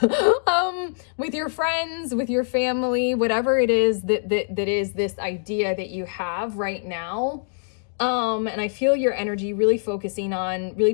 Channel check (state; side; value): silent; right; digital silence